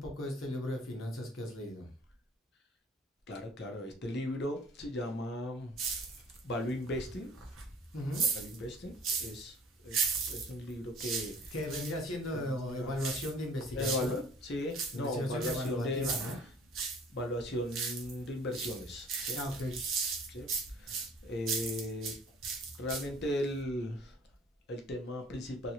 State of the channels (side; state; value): both; normal; correlation 0.50